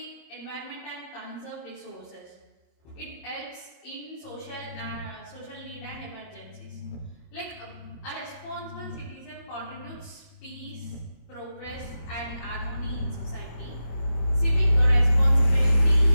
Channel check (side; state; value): right; late; 25 ms